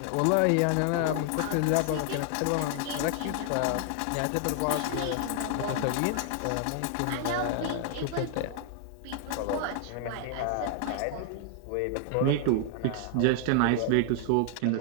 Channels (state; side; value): different; both; correlation 0.00